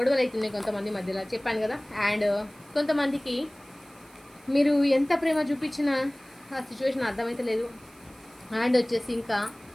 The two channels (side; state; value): right; noise; hiss, 27 dB below the sound